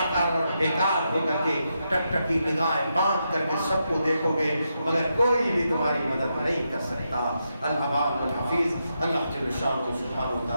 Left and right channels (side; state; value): both; inverted; correlation -0.84